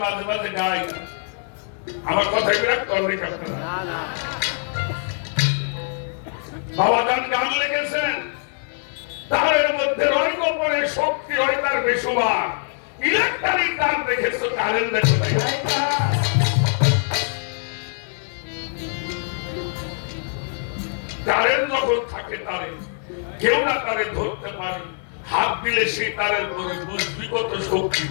মাঝে মাঝে গাই, আমার কথাই বিরাট করবে আপনারা। বাবা গান লিখেছেন, তারের মধ্যে রয় গোপনে শক্তি হয় তার বেশুমার, ইলেকট্রিক তার দেখেছো কারেন্ট দেখো নাই। কারেন্ট যখন থাকে তারে কেউ না তারে ধরতে পারে, হাত দিলে সেই তারের পরে বুঝবি কত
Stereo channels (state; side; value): silent; right; 55 dB below the other